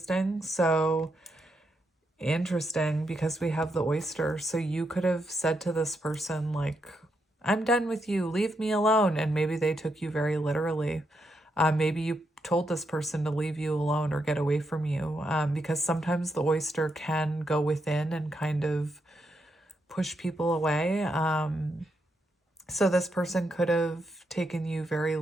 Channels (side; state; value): both; normal; correlation 0.81